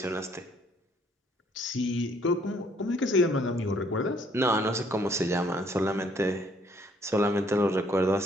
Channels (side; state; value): both; normal; correlation 0.64